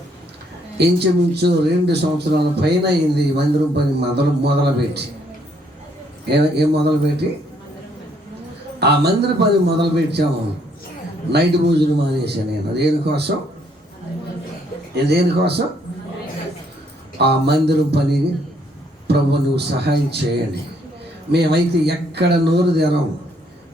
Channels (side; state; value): both; normal; correlation 0.68